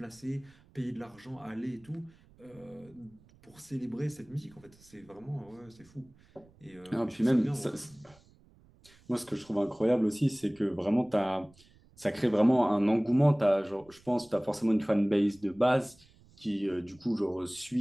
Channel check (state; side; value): noise; right; rumble, 28 dB below the sound